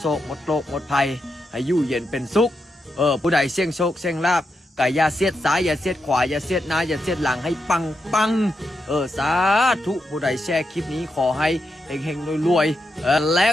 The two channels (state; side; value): normal; both; correlation 0.85